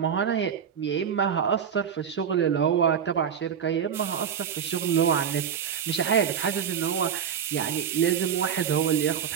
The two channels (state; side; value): quieter; left; 8.0 dB